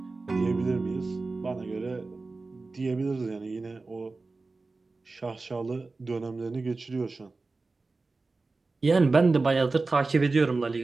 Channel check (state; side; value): quieter; left; 3.7 dB